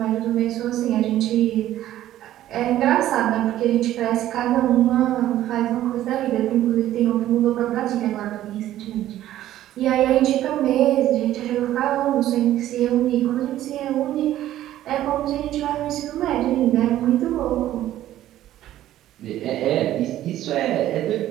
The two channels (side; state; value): left; quieter; 13.2 dB